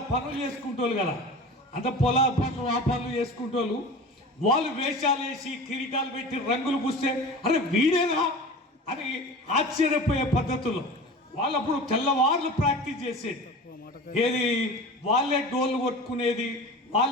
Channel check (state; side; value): normal; both; correlation 0.35